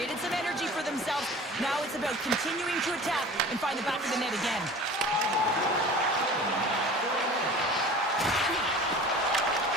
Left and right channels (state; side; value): normal; both; correlation 0.41